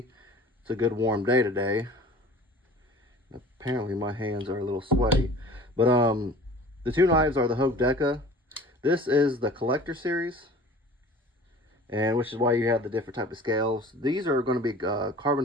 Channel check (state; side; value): normal; both; correlation 0.44